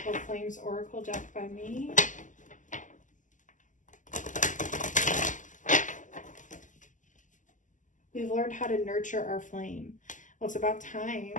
Flames Oracle deck by me. We've learned how to nurture our flame. Well, it's about time.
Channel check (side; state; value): right; late; 0.37 ms